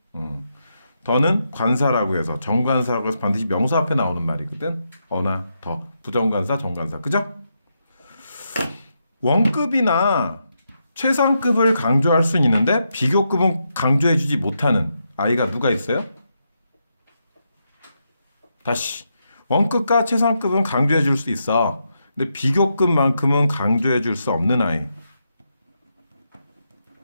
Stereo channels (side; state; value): both; inverted; correlation -0.83